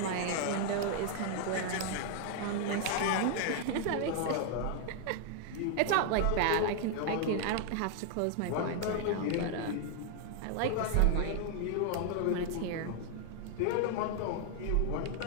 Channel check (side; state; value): both; different; correlation 0.00